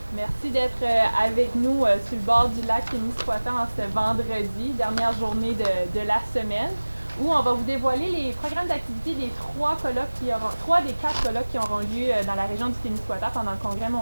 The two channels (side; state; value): both; inverted; correlation -1.00